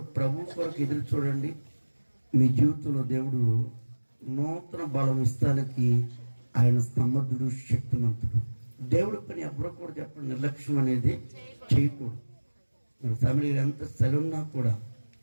ప్రభు కొరకు ఎదురు చూడండి. మీ జీవితంలో దేవుడు నూతన బలం ఇస్తానికి ఆయన సమర్థుడు, శక్తిమంతుడు. దేవుడి పని ఎవరు కూడా చెప్పండి, నిర్లక్ష్యం అనేది చేయకూడదు. మరి ఫ్యామిలీ ఎంత సెలవున్నా కూడా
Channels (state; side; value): inverted; both; correlation -1.00